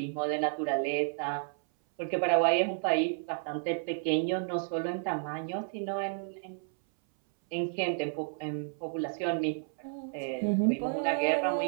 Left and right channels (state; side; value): silent; left; 57 dB below the other